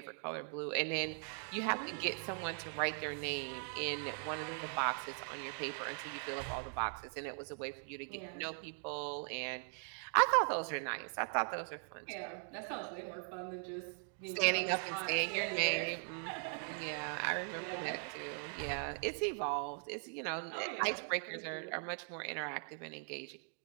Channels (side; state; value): left; silent; 51 dB below the other